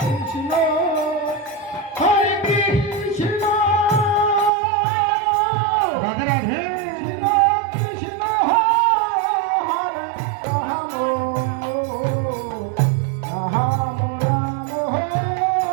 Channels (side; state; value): left; drops out; at 4.5 s